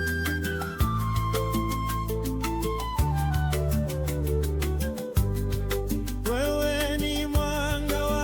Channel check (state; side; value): identical; both; correlation 1.00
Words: Wewe ni mwanga